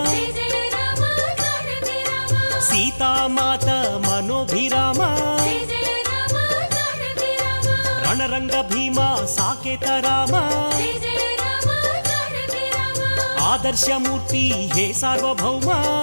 సీతామాత మనోభిరామ రణరంగ భీమ సాకేత రామ ఆదర్శమూర్తి హే సార్వభౌమ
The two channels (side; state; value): both; inverted; correlation -1.00